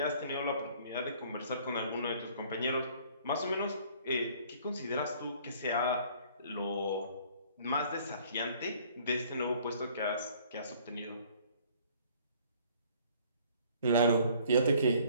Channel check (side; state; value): both; inverted; correlation -0.57